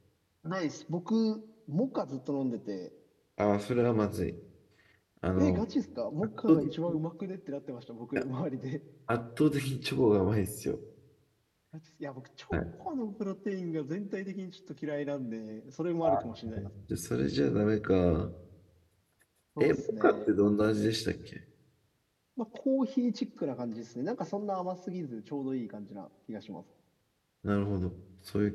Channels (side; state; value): both; identical; correlation 1.00